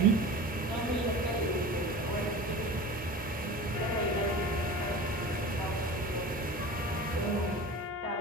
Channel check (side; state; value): both; normal; correlation 0.36